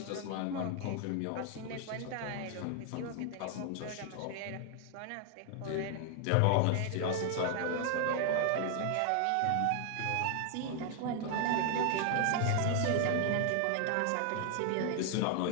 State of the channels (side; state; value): both; different; correlation 0.00